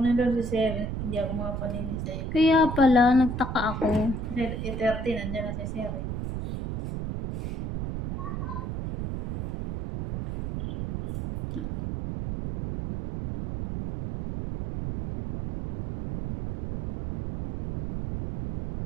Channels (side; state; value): right; noise; rumble, 5 dB below the sound